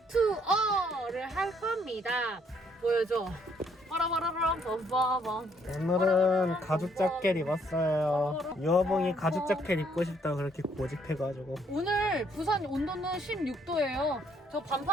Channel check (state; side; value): normal; both; correlation 0.68